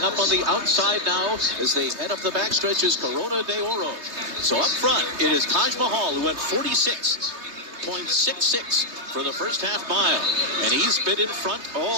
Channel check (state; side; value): late; left; 3.3 ms